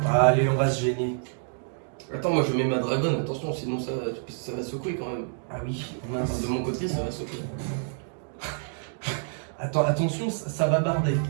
Allez on va se gêner. Attends moi je mets ma dragonne, attention sinon ça va secouer quand même. Ah oui. Enfin, Mince. de mon côté ça va secouer. Attends attention ça va barder.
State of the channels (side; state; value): left; silent; digital silence